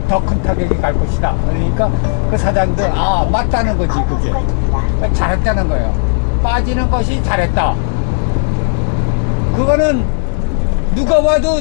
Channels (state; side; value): silent; right; digital silence